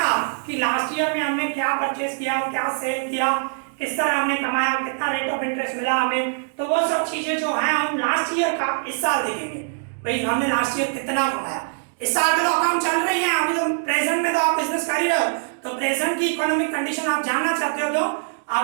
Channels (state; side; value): silent; left; digital silence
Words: कि लास्ट ईयर में हमने क्या परचेस किया, क्या सेल किया, किस तरह हमने कमाया, कितना रेट ऑफ इंटरेस्ट मिला हमें। तो वो सब चीजें जो हैं हम लास्ट ईयर का इस साल देखेंगे, भाई हमने लास्ट ईयर कितना कमाया। इस साल तो अकाउंट चल रही है, अभी तो प्रेजेंट में तो आप बिजनेस कर ही रहे हो, तो प्रेजेंट की इकोनॉमिक कंडीशन आप जानना चाहते हो तो